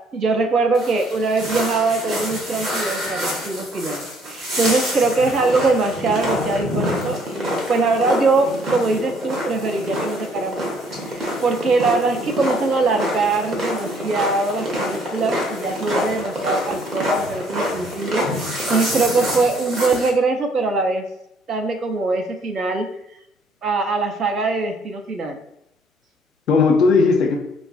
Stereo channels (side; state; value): both; normal; correlation 0.63